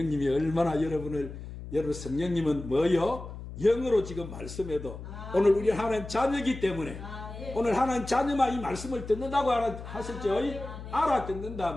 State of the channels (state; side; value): noise; left; hum, 11 dB below the sound